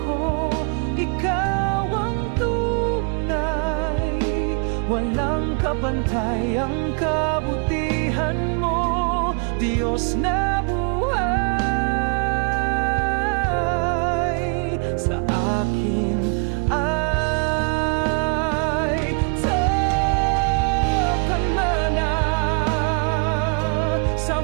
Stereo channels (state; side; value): quieter; left; 38.9 dB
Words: ko, ikaw ang tunay. Walang kapantay ang kabutihan mo, Diyos na buhay. Sa akin ay takan mana, sa